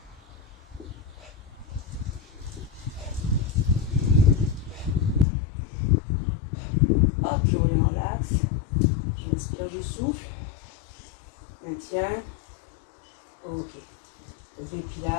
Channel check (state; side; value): drops out; right; at 5.2 s